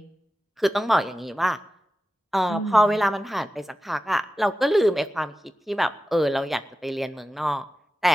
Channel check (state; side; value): normal; both; correlation 0.94